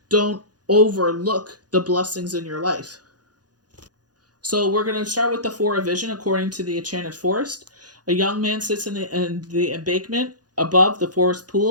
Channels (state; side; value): late; left; 0.69 ms